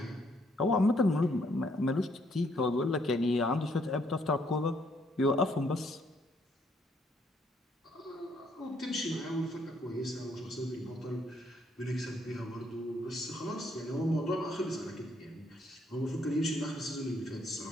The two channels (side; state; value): both; normal; correlation 0.69